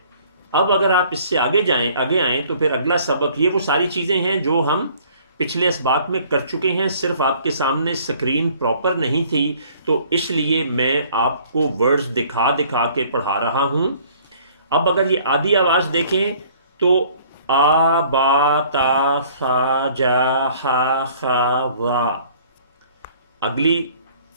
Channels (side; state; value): both; inverted; correlation -0.56